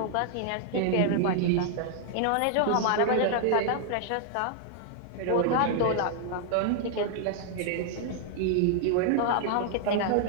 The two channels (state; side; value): different; both; correlation 0.00